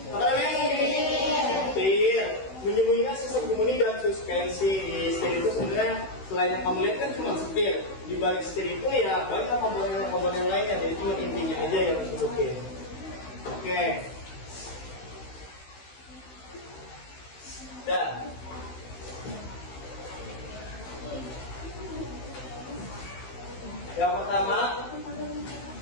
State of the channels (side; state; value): right; late; 16 ms